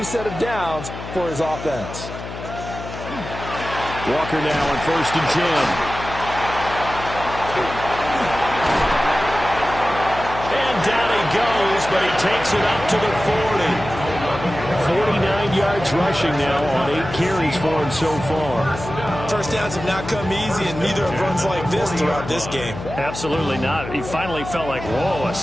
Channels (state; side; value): noise; left; hum, 10 dB below the sound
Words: set of downs for his offense. Walker now on 1st and 10. Down he goes, but he takes it up to the 40. 49 yards rushing now on 8 carries for him so far. First downs have not come easy, and neither have runs like this throughout this game. Absolutely not. He finally felt like, whoa, a